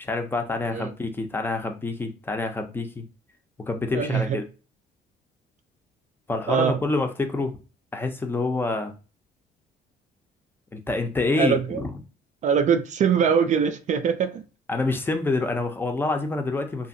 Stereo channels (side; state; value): both; normal; correlation 0.55